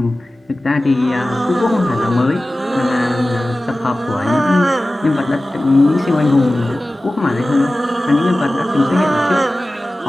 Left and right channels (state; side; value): normal; both; correlation 0.96